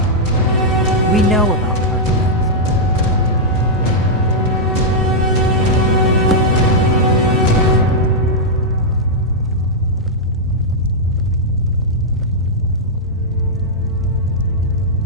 We know about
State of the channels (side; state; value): both; normal; correlation -0.06